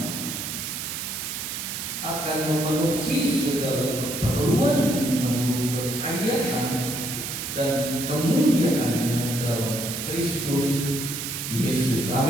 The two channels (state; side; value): noise; right; hiss, 5 dB below the sound